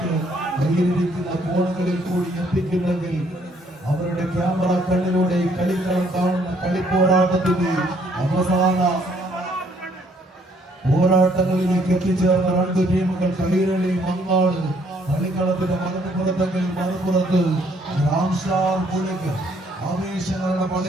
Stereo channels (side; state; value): both; normal; correlation 0.65